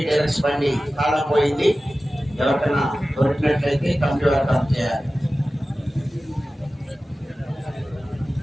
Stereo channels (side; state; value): both; normal; correlation 0.96